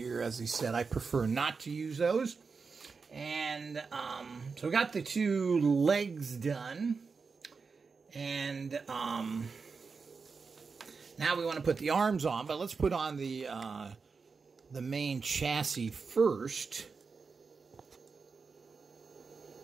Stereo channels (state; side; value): quieter; left; 4.9 dB